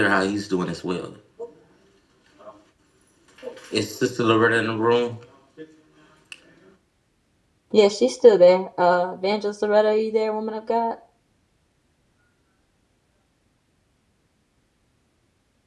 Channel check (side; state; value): both; identical; correlation 1.00